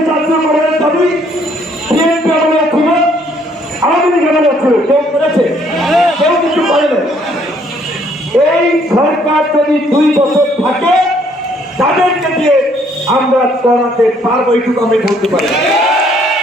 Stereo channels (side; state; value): both; normal; correlation 0.65